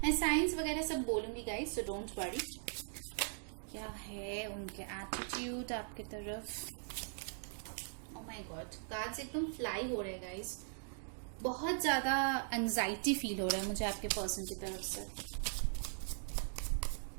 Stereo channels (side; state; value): left; silent; digital silence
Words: मैं साइंस वगैरह सब बोलूंगी गाइस, सो डोंट वरी। क्या है उनके एटीट्यूड आपके तरफ? ओ माय गॉड, कार्ड्स एकदम फ्लाई हो रहे हैं गाइस। बहुत ज्यादा एंजाइटी फील हो रहा है मुझे आपके पर्सन की तरफ से।